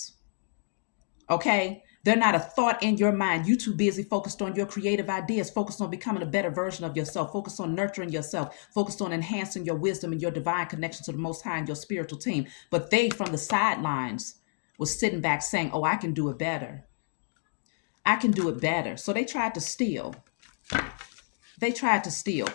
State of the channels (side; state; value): right; silent; digital silence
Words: Okay? They're not a thought in your mind. You too busy focused on your creative ideas, focused on becoming a better version of yourself, focused on nurturing yourself, focused on enhancing your wisdom and your divine connection to the Most High and your spiritual team. But they, from the sidelines, was sitting back saying, oh, I can do it better. I can do it better. So they tried to steal. They tried to steal.